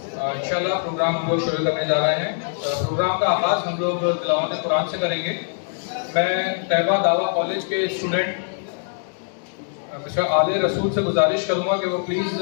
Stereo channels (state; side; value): silent; right; digital silence